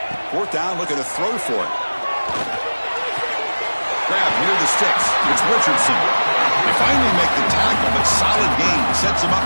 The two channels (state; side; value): inverted; both; correlation -1.00